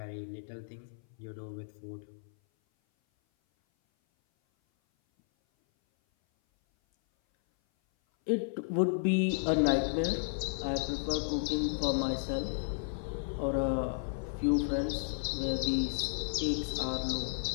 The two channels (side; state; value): right; silent; 56 dB below the other